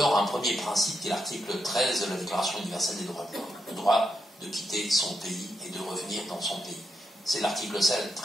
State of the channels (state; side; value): normal; both; correlation 0.82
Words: un premier principe qui est l'article 13 de la Déclaration universelle des droits de l'homme, le droit de quitter son pays et de revenir dans son pays. C'est l'article